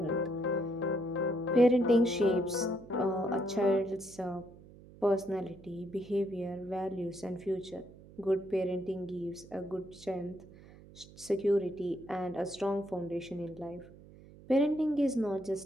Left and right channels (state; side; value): noise; right; hum, 20 dB below the sound